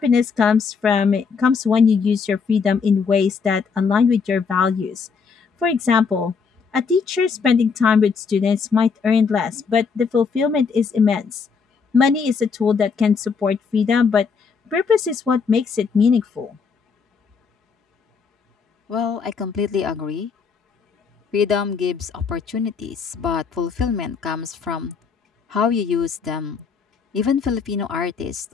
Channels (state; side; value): quieter; right; 5.5 dB